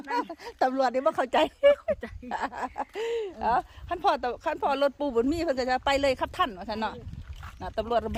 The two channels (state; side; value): identical; both; correlation 1.00